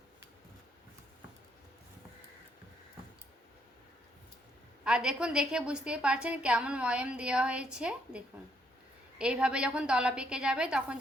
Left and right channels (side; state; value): both; normal; correlation 0.72